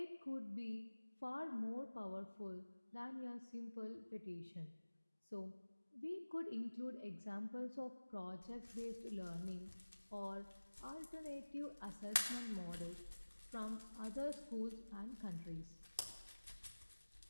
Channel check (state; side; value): inverted; both; correlation -1.00